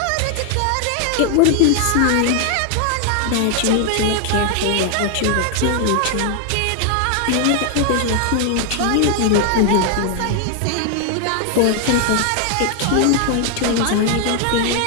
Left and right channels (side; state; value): both; different; correlation 0.00